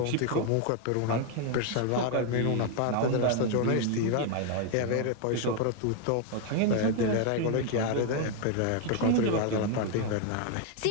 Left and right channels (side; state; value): both; different; correlation 0.00